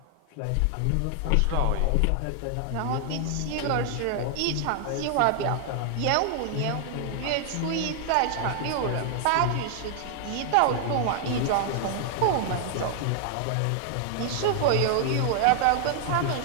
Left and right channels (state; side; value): different; both; correlation 0.00